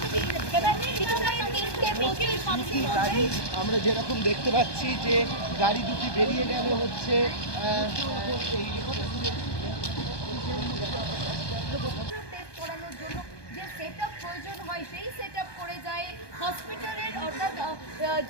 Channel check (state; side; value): late; right; 1.2 ms